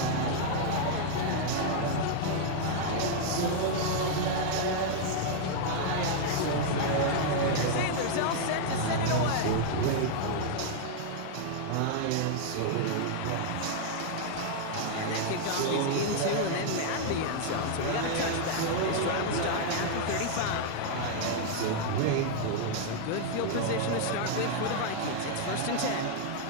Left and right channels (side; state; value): both; different; correlation 0.00